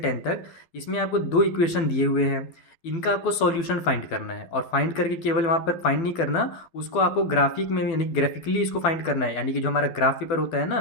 तक, इसमें आपको दो इक्वेशन दिए हुए हैं। इनका आपको सॉल्यूशन फाइंड करना है, और फाइंड करके केवल वहाँ पर फाइंड नहीं करना, उसको आपको ग्राफिक में यानी ग्राफिकली इसको फाइंड करना है, यानी कि जो हमारा ग्राफ पेपर होता है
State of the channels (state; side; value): late; right; 12 ms